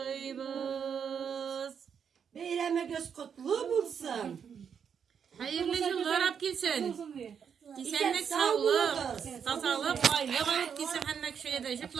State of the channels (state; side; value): quieter; left; 7.3 dB